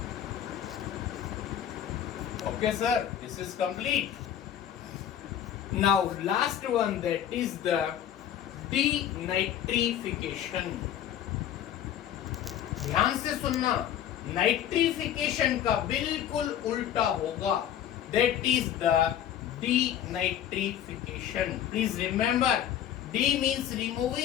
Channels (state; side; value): quieter; right; 10.4 dB